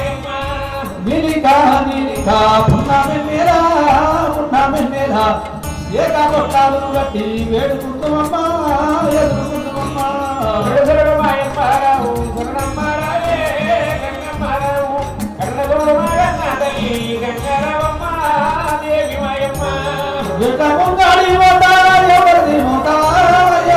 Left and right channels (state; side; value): identical; both; correlation 1.00